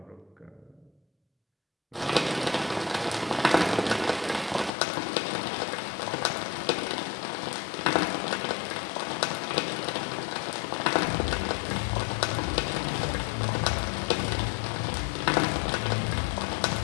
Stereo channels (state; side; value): drops out; right; at 4.7 s